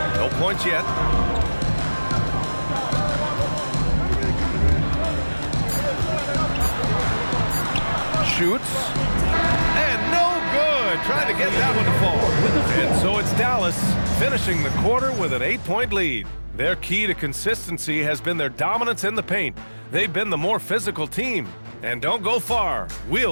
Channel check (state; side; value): inverted; both; correlation -1.00